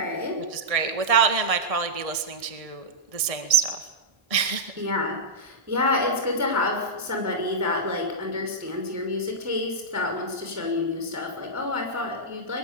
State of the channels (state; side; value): late; left; 1.6 ms